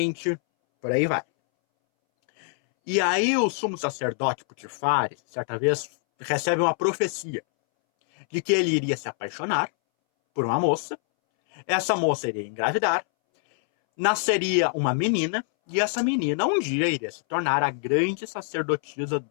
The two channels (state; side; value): silent; right; 62 dB below the other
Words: por aí vai. E aí o sumo sacerdote Putifari, certa vez, recebe uma profecia de que ele iria se apaixonar por uma moça, essa moça iria engravidar, nasceria uma menina, e essa menina um dia iria se tornar a grande sacerdotisa